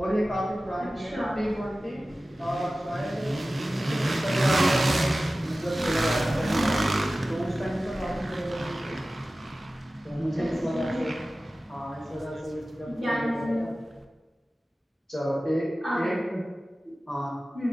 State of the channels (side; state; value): both; normal; correlation 0.96